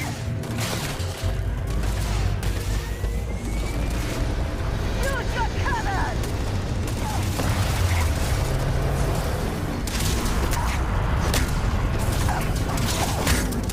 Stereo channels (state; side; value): identical; both; correlation 1.00